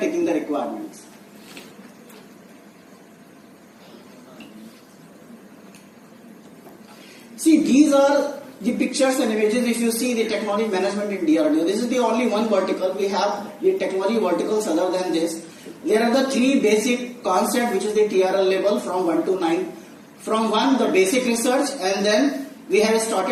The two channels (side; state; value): both; identical; correlation 1.00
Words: the requirements. See, these are the pictures and images. If you see the technology management in DRDO, this is the only one vertical. We have the technology verticals other than this. There are the three basic concepts, which is the TRL level from 1 to 9. From 1, the basic research, and then we have